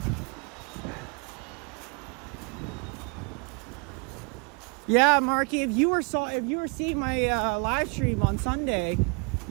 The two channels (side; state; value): left; quieter; 33.2 dB